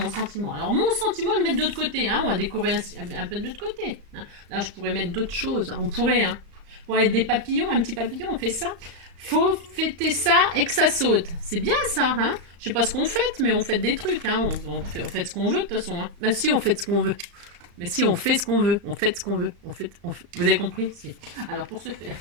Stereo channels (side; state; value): left; late; 35 ms